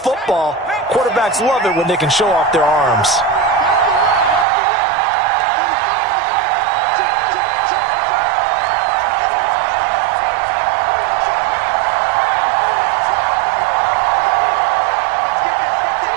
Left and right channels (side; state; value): left; drops out; at 4.5 s